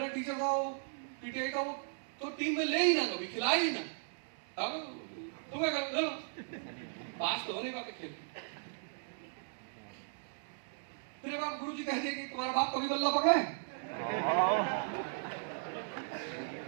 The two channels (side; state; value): left; silent; digital silence